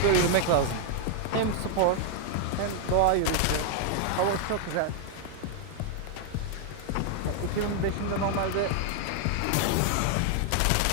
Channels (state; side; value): different; both; correlation 0.00